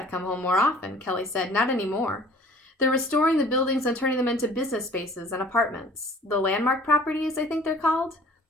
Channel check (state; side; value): normal; both; correlation 0.50